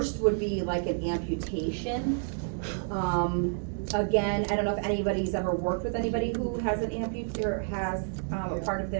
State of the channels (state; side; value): silent; left; 58 dB below the other